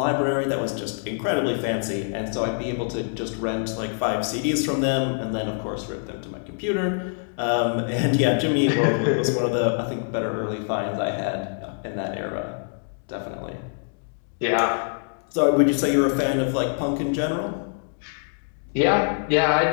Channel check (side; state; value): right; silent; digital silence